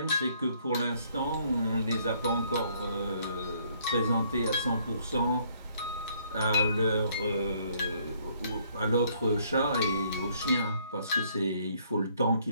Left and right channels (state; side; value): inverted; both; correlation -0.66